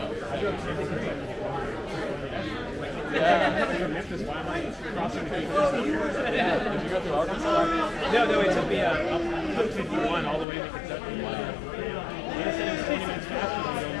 Memphis, why am I crossing the Did you go through Arkansas? No, it took me up 51 all the way to Kentucky. Wow. They said it was 20 minutes faster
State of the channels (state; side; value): drops out; right; at 10.5 s